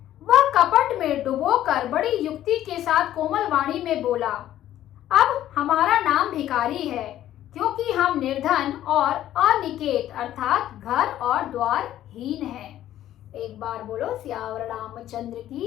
वह कपट में डुबोकर बड़ी युक्ति के साथ कोमल वाणी में बोला, अब हमारा नाम भिखारी है, क्योंकि हम निर्धन और अनिकेत अर्थात घर और द्वार हीन हैं। एक बार बोलो सियावर रामचंद्र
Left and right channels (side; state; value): right; quieter; 12.6 dB